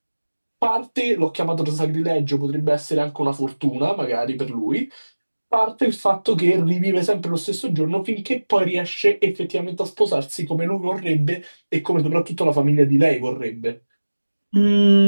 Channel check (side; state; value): both; inverted; correlation -1.00